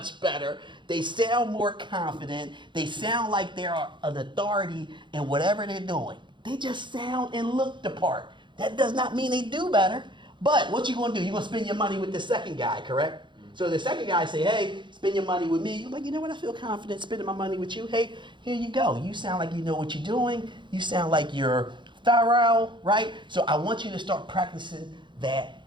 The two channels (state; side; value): late; left; 0.23 ms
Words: better They sound more confident. They sound like they're an authority in whatever they're doing. They just sound and look the part. That does not mean they do better. But what you gonna do? You're gonna spend your money with the second guy, correct? So the second guy say, hey, spend your money with me. You're like, you know what? I feel confident spending my money with you. Hey, here you go. You sound like you know what you're doing. You sound like you're thorough, right? So I want you to start practicing that